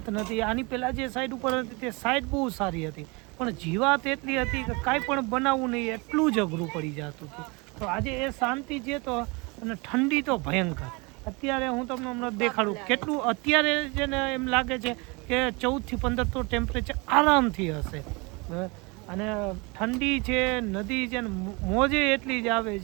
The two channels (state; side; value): quieter; left; 28.0 dB